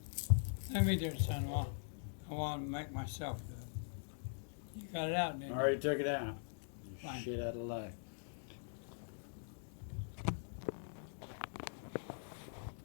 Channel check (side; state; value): right; silent; digital silence